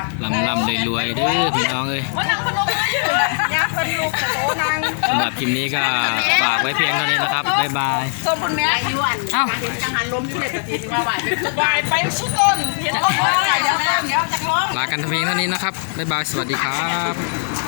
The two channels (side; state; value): right; silent; digital silence